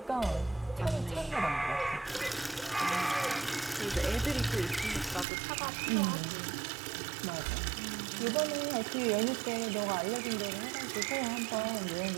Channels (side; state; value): left; drops out; at 5.2 s